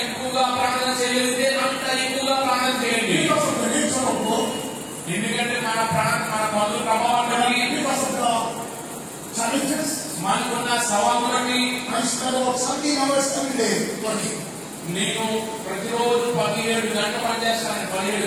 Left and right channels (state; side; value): identical; both; correlation 1.00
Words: ఎక్కువగా ప్రార్థన చేయగలిగితే అంత ఎక్కువగా ప్రార్థన చేయండి. Because of the nature of work. ఎందుకంటే మన పనుల ప్రభావం బట్టి, Because of the challenges. మనకున్న సవాలు బట్టి I spend about 17 hours every day working. నేను ప్రతిరోజు 17 గంటలు పనిచేస్తాను. 17